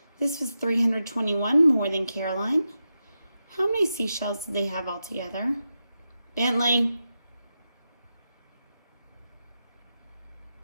This was 321 more than Caroline. How many seashells did they have all together? Bentley.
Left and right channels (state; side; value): inverted; both; correlation -0.89